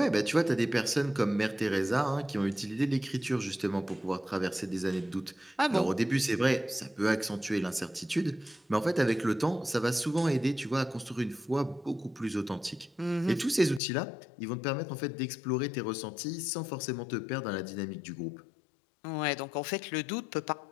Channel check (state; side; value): drops out; right; at 13.8 s